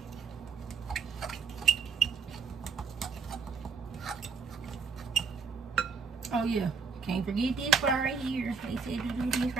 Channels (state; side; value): quieter; left; 5.3 dB